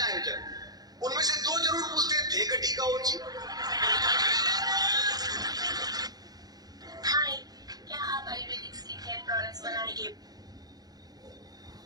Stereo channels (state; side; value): late; left; 0.19 ms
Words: आयोजन, उनमें से 2 जरूर पूछते हैं थे गटी का ओची। हाय, क्या आप आयुर्वेदिक स्किन केयर प्रोडक्ट्स बनाने के